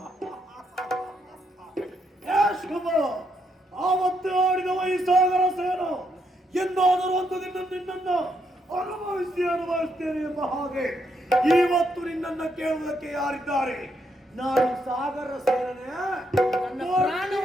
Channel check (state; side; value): normal; both; correlation 0.77